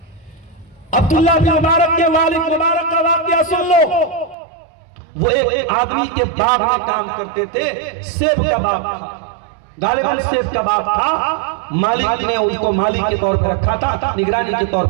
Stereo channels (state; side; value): drops out; left; at 4.4 s